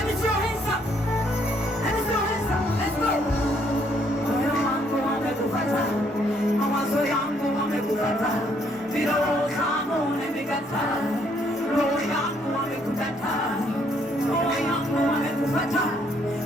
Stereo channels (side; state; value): both; normal; correlation 0.68